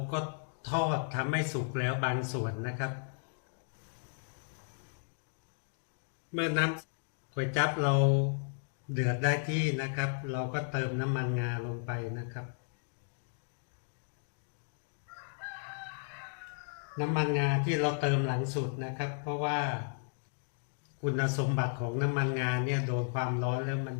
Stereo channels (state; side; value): silent; right; digital silence